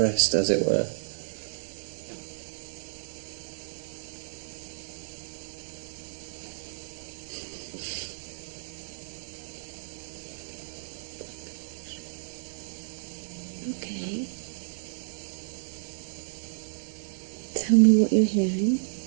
as it were. Okay. Tell me what you're hearing.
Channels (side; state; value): left; silent; digital silence